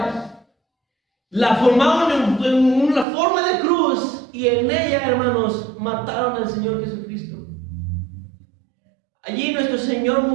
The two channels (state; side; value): drops out; left; at 3.1 s